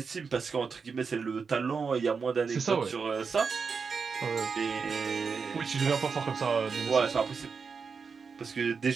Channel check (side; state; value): left; quieter; 5.4 dB